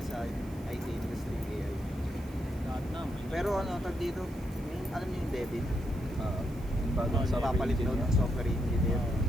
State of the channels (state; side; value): noise; right; hiss, 24 dB below the sound